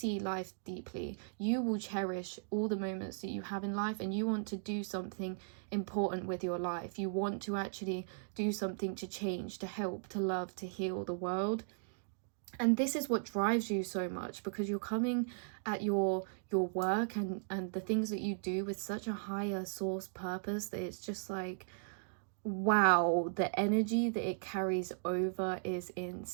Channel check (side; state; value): left; silent; digital silence